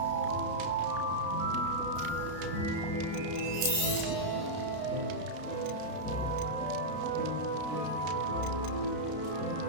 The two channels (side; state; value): left; late; 32 ms